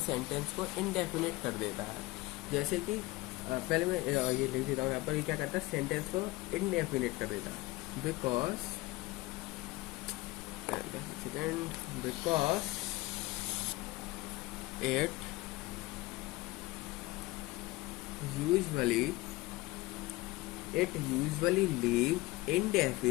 सेंटेंस को इंडेफिनिट कर देता है। जैसे कि पहले मैं ये लिख देता हूँ यहाँ पर, ये क्या करता है? सेंटेंस को इंडेफिनिट कर देता है। Because it usually leave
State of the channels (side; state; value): right; quieter; 20.0 dB